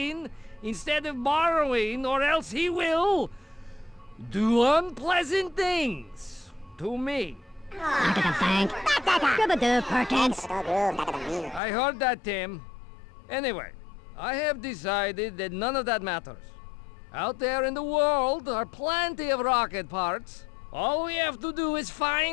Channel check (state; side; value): drops out; right; at 11.6 s